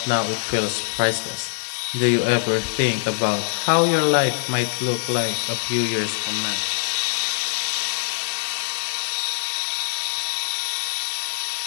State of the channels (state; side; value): silent; right; digital silence